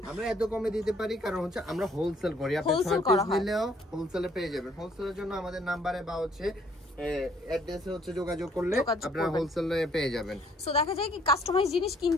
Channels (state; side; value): normal; both; correlation 0.63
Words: আমরা এত কমে দিতে পারি কারণ হচ্ছে আমরা হোলসেল করি। আপনি 6 পিস নিলেও হোলসেলে পেয়ে যাবেন। হোলসেলের জন্য আমাদের নাম্বারে বা হচ্ছে অ্যাড্রেসে হচ্ছে যোগাযোগ করলে আপনারা হোলসেলে পেয়ে যাবেন। সো দেখা যায় কি কাস্টমাইজ জিনিস